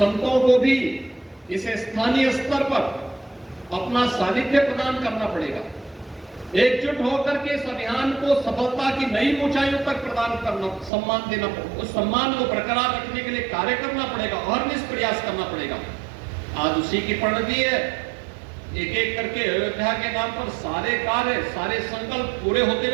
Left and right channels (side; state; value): left; drops out; at 10.9 s